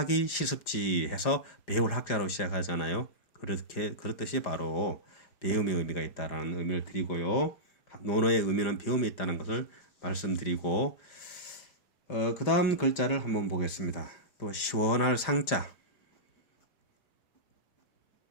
실습지 해서 배울 학자로 시작하잖아요. 그렇듯이 바로 배움의 의미가 있다라는 의미를 드리고요. 논어의 의미는 배움이 있다는 것을 말씀드리고 그 다음 글자를 한번 보겠습니다. 또 시원할 상자.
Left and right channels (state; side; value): late; right; 5.0 ms